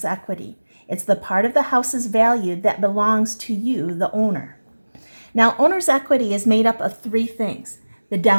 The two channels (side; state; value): both; inverted; correlation -1.00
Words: equity. It's the part of the house's value that belongs to you, the owner. Now, owner's equity is made up of three things: the